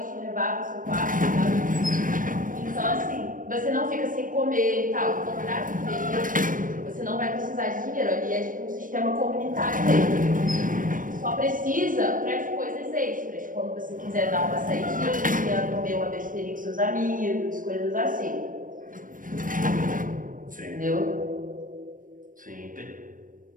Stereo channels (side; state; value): left; late; 0.39 ms